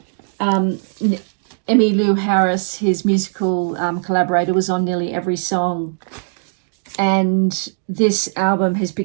Emmylou Harris, his musical collaborator, was on nearly every song. And this album has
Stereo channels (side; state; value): left; silent; digital silence